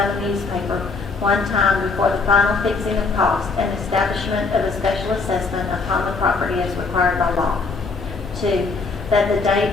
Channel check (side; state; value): right; quieter; 4.2 dB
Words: newspaper one time before the final fixing of cost and establishment of a special assessment upon the property as required by law. 2. That the date